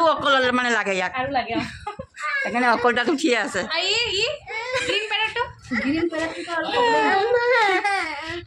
অকল মানে লাগে ইয়াক, সেইকাৰণে অকল দাঁত উঠিয়ে আছে।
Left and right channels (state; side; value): identical; both; correlation 1.00